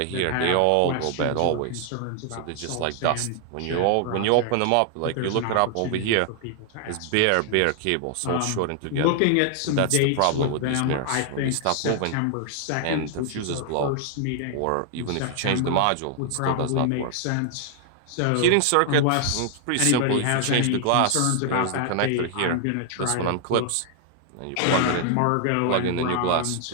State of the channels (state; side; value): different; both; correlation 0.00